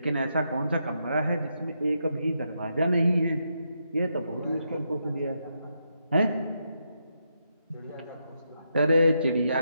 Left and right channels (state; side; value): inverted; both; correlation -0.82